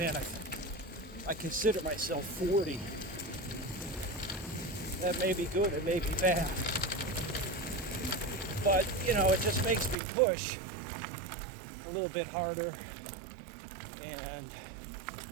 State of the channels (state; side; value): drops out; left; at 10.0 s